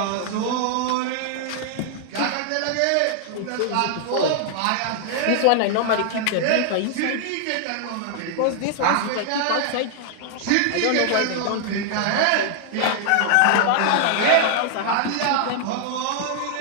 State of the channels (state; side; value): different; both; correlation 0.00